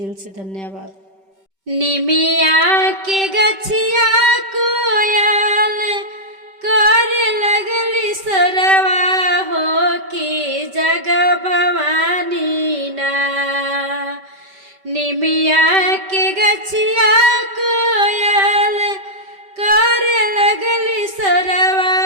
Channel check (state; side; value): late; left; 5.2 ms